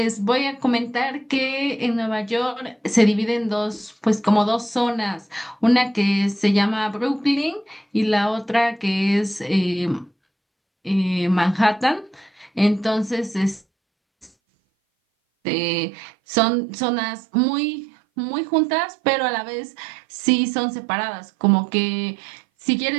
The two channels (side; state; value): left; drops out; at 14.3 s